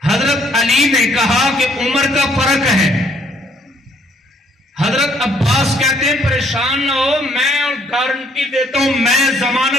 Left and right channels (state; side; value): normal; both; correlation 0.66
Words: حضرت علی نے کہا کہ عمر کا فرق ہے۔ حضرت عباس کہتے ہیں پریشان نہ ہو، میں گارنٹی دیتا ہوں، میں